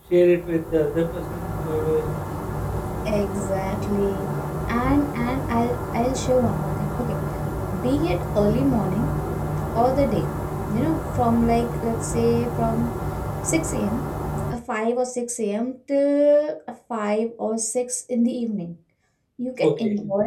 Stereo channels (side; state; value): both; identical; correlation 1.00